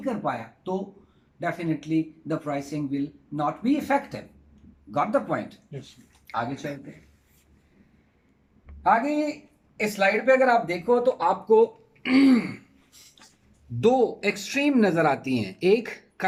कर पाया, तो definitely the pricing will not be effective. Got the point? Yes. आगे चलते हैं। आगे इस स्लाइड पे अगर आप देखो तो आपको दो एक्सट्रीम नजर आती हैं। एक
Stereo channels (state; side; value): identical; both; correlation 1.00